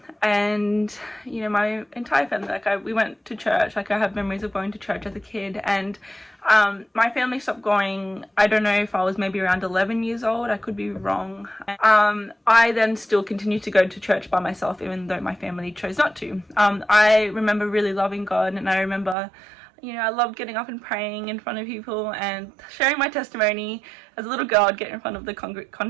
and you know, my entire family, we went to church. I have memories of going to church as a kid, and my family stopped going, I don't know if I was maybe around 11 years old, I could be wrong. I then still continued to go to church by myself, even though my family chose not to. I remember really loving God, and I remember, you know, I loved getting up and praying in front of people and sharing my testimony. As a little girl, I'd get in front of the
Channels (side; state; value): left; drops out; at 19.2 s